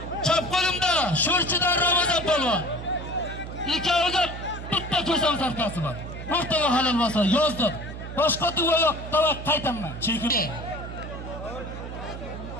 Chap qo'limda Sho'rchidan Ramazon polvon. Ikkoviga bitta ko'sam sarkasi bor. O'rtaga halol bo'lsa yozdim. Boshqa duo yo'q, tavak qaytaman. Chekin.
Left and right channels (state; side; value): noise; right; hum, 9 dB below the sound